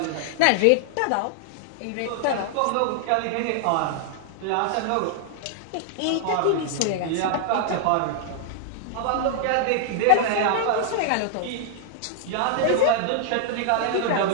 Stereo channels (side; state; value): both; different; correlation 0.00